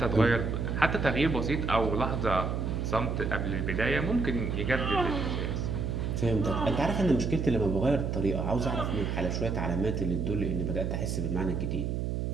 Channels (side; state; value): right; noise; hum, 1 dB below the sound